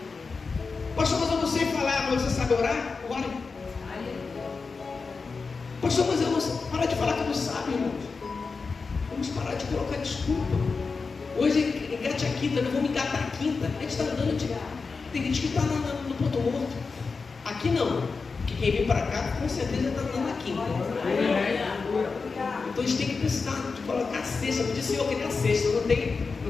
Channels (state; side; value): quieter; right; 4.6 dB